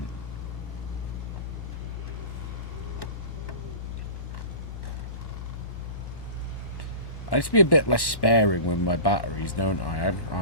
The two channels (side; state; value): right; late; 1.1 ms